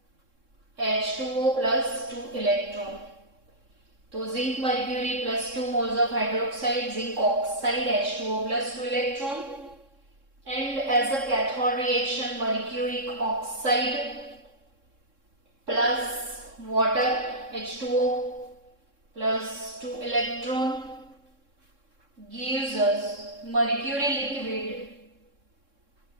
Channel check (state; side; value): late; left; 3.7 ms